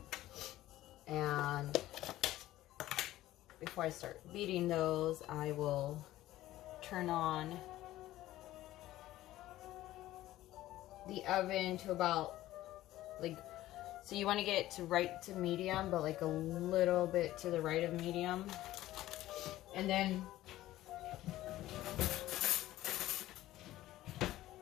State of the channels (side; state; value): right; quieter; 15.2 dB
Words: And before I start beating those, I will turn on the oven to about, like, so you want to get it to right to medium, but like a little bit to the right of medium. And then